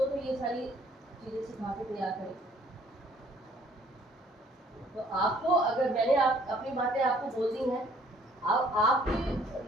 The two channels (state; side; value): normal; both; correlation 0.60